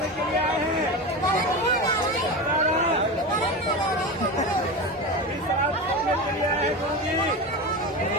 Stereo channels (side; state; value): both; normal; correlation 0.23